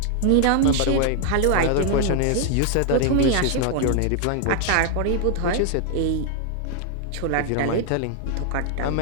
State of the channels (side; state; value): both; different; correlation 0.00